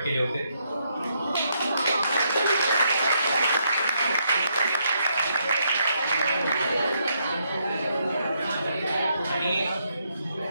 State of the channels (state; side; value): inverted; both; correlation -0.76